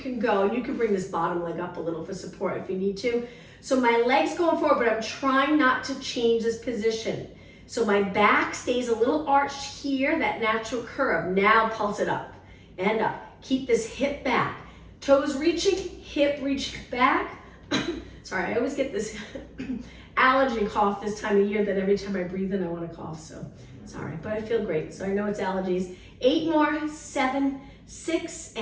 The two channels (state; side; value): identical; both; correlation 1.00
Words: go. And you can bring this bottom leg up a little for support if you need to. So my leg's going forward, but I'm trying not to change this position. So my back stays a little arched here, that natural curve. Now pulse it up and up. Keep this hip back. Toes reaching, hip reach back. Sorry, I always get this allergy cough this time of year that every time I breathe in I want to cough. So sorry, but I feel great. So I know it's allergies. 8 more, 7, 6,